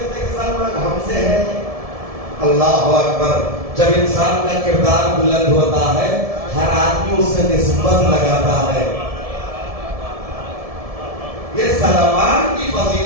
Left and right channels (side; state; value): left; late; 1.7 ms